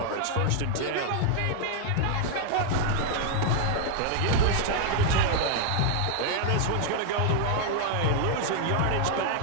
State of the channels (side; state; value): both; different; correlation 0.00